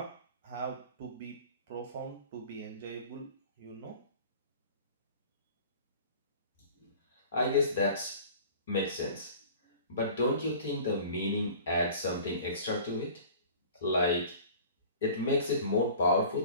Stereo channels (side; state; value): both; inverted; correlation -0.44